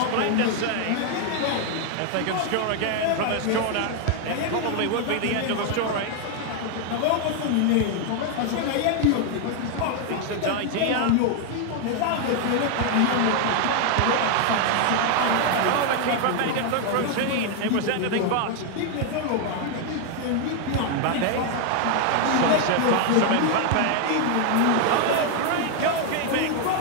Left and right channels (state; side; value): different; both; correlation 0.01